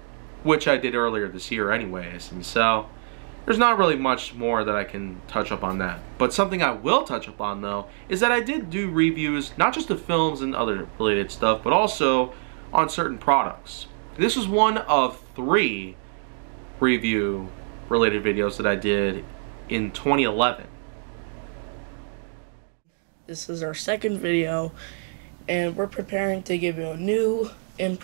which I did earlier this year anyways, and so there's not really much more that I can touch up on that. But something I will touch up on, though, is that I did do reviews, not just of films and other related stuff, but also on certain products. This was one of 3 review-related videos that I did in 2011. This is our second video, and we're preparing to give you a new,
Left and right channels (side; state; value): left; silent; 62 dB below the other